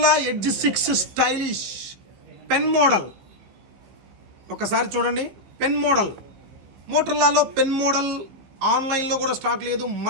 edge 6 stylish pen model. ఒకసారి చూడండి, pen model. మోటరోలాలో pen model ఆన్లైన్లో కూడా స్టాక్ లేదు,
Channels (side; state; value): left; late; 15 ms